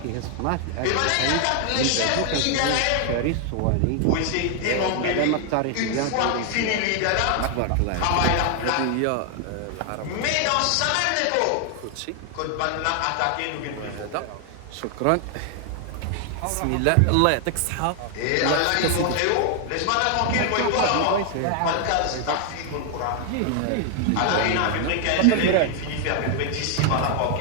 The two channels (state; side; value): different; both; correlation 0.00